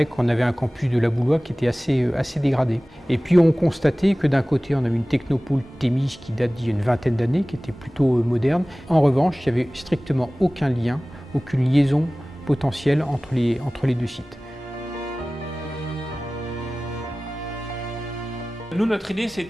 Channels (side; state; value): both; normal; correlation 0.98